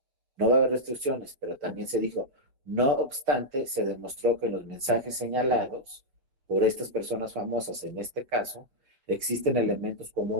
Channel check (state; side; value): late; left; 7.1 ms